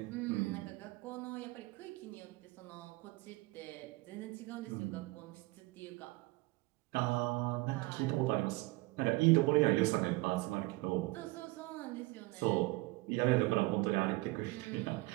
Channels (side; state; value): left; quieter; 22.2 dB